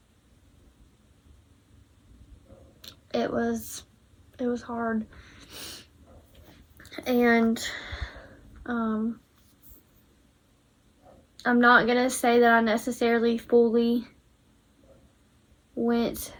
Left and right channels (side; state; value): both; identical; correlation 1.00